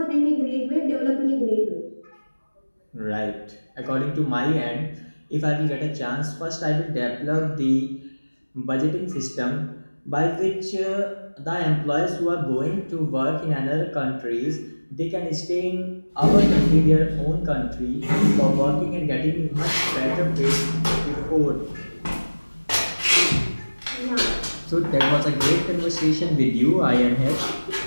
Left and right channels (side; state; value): both; inverted; correlation -1.00